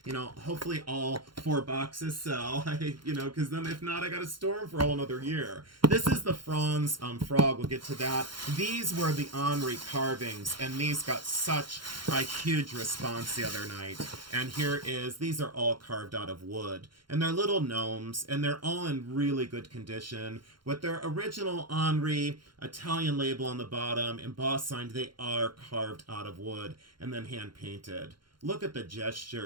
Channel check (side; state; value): left; late; 0.72 ms